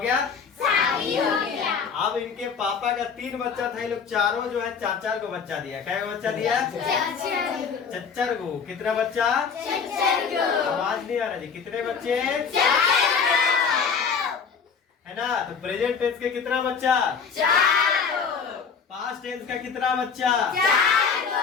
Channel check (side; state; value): right; quieter; 6.0 dB